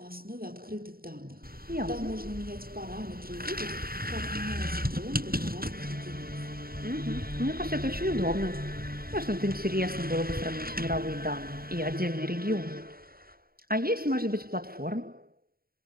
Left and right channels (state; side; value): late; left; 0.43 ms